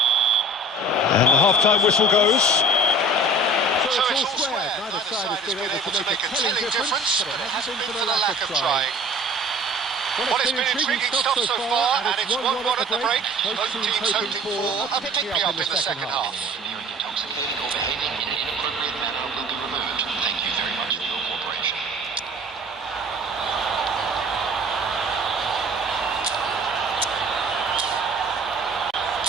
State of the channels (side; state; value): both; normal; correlation 0.45